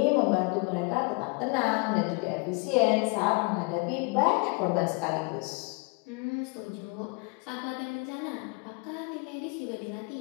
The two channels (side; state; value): right; quieter; 31.4 dB